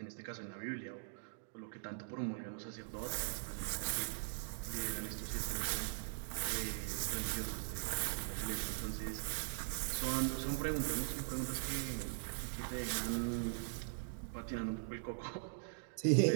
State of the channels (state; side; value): silent; left; digital silence